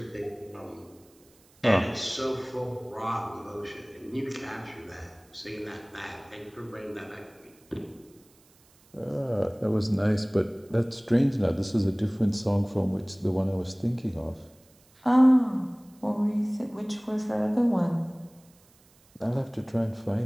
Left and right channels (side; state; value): right; noise; hiss, 30 dB below the sound